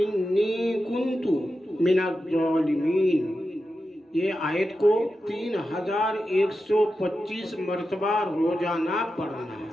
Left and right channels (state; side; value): normal; both; correlation 0.90